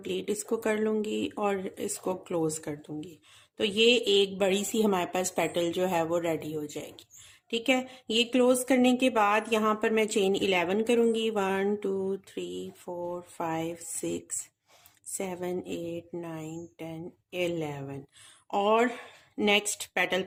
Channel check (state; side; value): identical; both; correlation 1.00